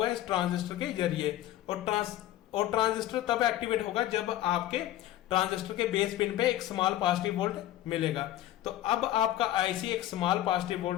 है इस ट्रांजिस्टर के जरिए। और ट्रांजिस्टर तब एक्टिवेट होगा जब आपके ट्रांजिस्टर के बेस पिन पे एक स्मॉल पॉजिटिव वोल्ट मिलेगा। तो अब आपका आईसी एक स्मॉल पॉजिटिव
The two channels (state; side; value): quieter; right; 13.7 dB